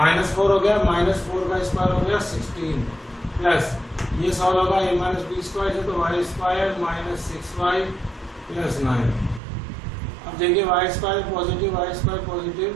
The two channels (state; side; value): drops out; left; at 9.4 s